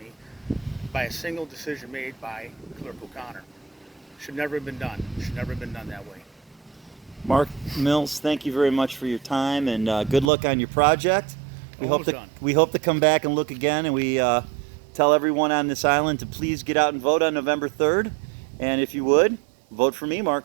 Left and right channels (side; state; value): left; drops out; at 10.3 s